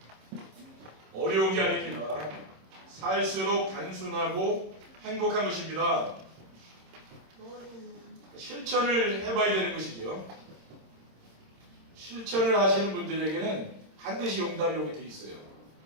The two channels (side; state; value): left; late; 26 ms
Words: 어려운 게 아닙니다. 살수록 단순하고 행복한 것입니다. 실천을 해봐야 되는 것이죠. 실천을 하시는 분들에게는 반드시 응답이 오게 돼 있어요.